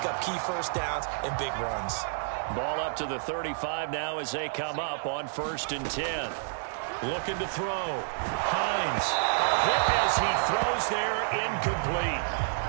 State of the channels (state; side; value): silent; left; digital silence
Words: up key first downs and big runs. Ball up to the 35 now as they come up on 1st and 10. Looking to throw. Hines. A hit as he throws there, incomplete.